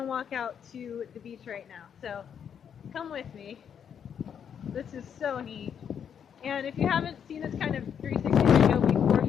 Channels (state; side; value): quieter; right; 8.0 dB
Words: walk out to the beach right now. So come with me. This is so neat. And if you haven't seen this kind of 360 video before,